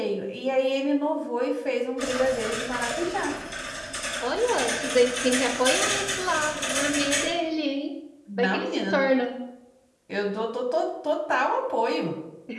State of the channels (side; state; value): both; identical; correlation 1.00